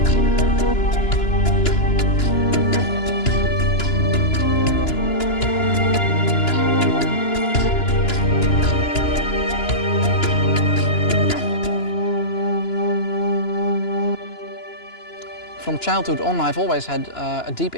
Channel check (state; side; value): late; right; 2.9 ms